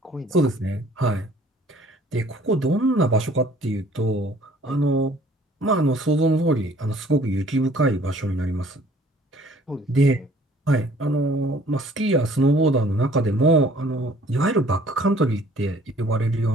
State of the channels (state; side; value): normal; both; correlation 0.55